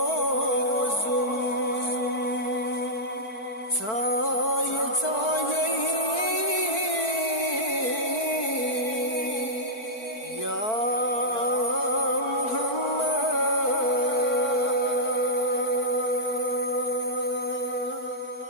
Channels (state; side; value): late; right; 4.5 ms